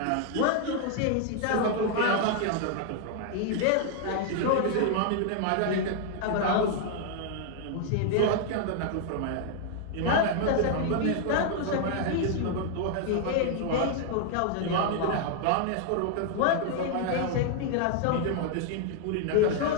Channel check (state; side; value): different; both; correlation 0.00